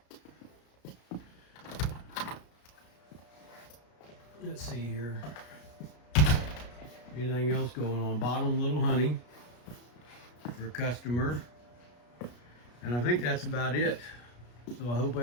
Let's see here. Anything else going on? Bottom little honey for a customer. And I think that's about it. So I hope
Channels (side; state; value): right; late; 33 ms